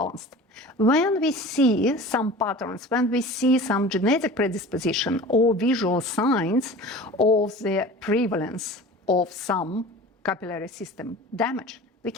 When we see some patterns, when we see some genetic predisposition or visual signs of the prevalence of some capillary system damage, we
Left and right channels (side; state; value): both; normal; correlation 0.38